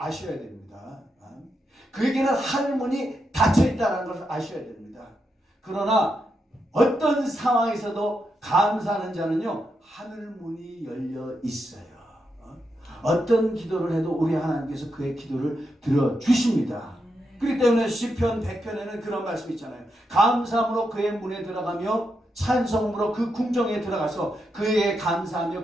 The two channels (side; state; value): both; normal; correlation 0.84